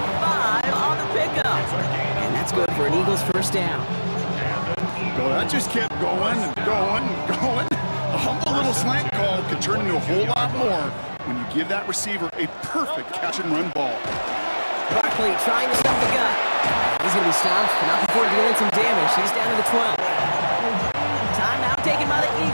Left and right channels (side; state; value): both; inverted; correlation -1.00